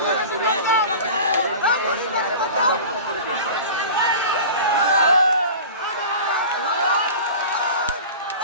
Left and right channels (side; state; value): both; inverted; correlation -0.36